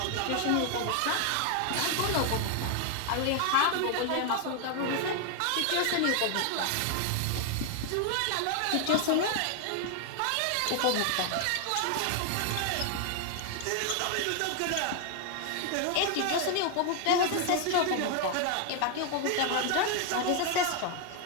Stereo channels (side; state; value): both; different; correlation 0.00